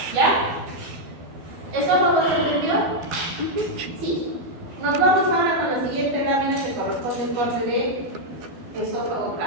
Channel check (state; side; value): late; left; 12 ms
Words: ¿ya? ¿Eso no se entendió? Sí. Nos vamos ahora con la siguiente lámina que corresponde al corte de esófago